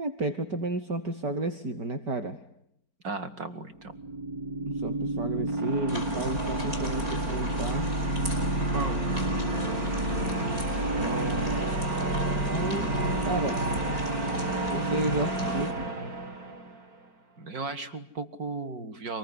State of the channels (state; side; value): late; left; 4.4 ms